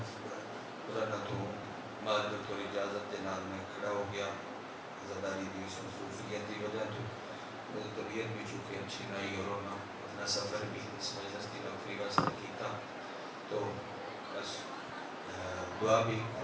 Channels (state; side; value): identical; both; correlation 1.00